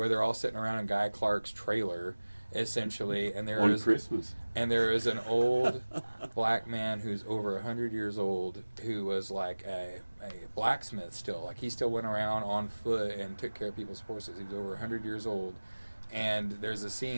they're all sitting around in Guy Clark's trailer, essentially, and there is an old black man who's over 100 years old who was like a blacksmith still. Like, he still went around on foot and took care of people's horses. He was over 100 years old. And there's a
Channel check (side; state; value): both; inverted; correlation -1.00